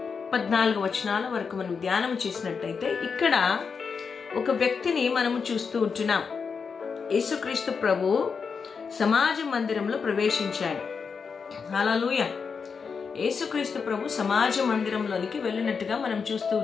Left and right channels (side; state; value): right; quieter; 5.6 dB